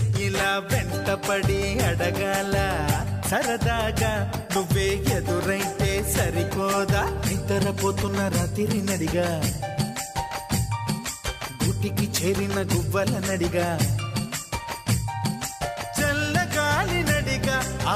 ఇలా వెంటపడి అడగాల సరదాగా నువ్వే ఎదురైతే సరిపోదా నిద్రపోతున్న రాత్రి నడిగా గుటికి చేరిన గువ్వల నడిగా చల్లగాలి నడిగా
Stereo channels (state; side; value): identical; both; correlation 1.00